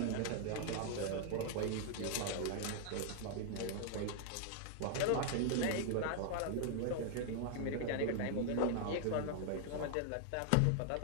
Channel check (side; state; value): both; different; correlation 0.00